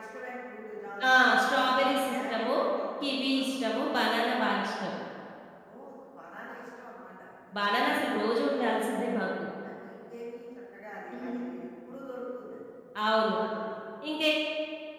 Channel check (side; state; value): both; identical; correlation 1.00